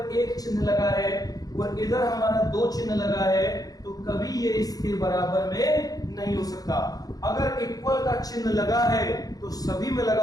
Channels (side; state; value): right; late; 0.18 ms